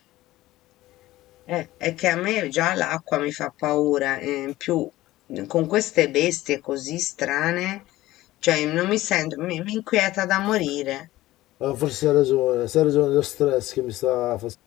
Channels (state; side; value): quieter; right; 16.6 dB